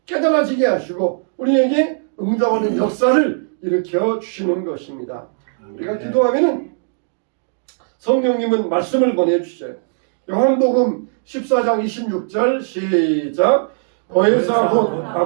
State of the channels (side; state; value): left; silent; digital silence